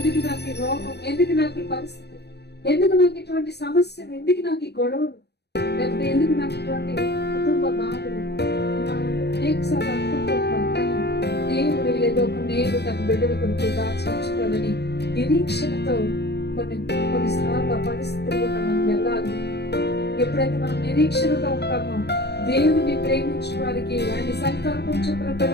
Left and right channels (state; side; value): late; right; 0.48 ms